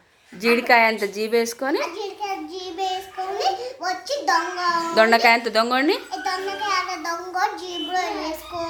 జీడికాయ అంత జీబేసుకొని దొండకాయ అంత దొంగని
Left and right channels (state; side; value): identical; both; correlation 1.00